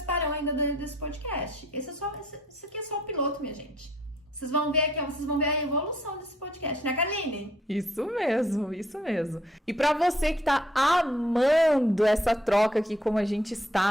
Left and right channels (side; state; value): both; normal; correlation 0.64